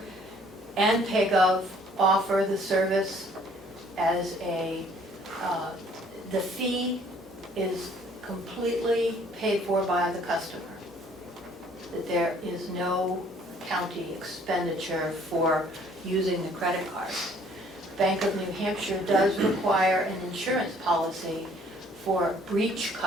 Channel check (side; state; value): both; normal; correlation 0.59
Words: and PayGov offer the service as the fee is completely paid for by the customer. That there is no county expenditure for using the credit card. Bank of New Hampshire does require an insurance policy for breach